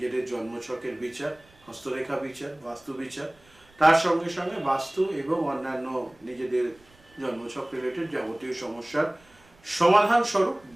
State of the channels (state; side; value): noise; right; rumble, 29 dB below the sound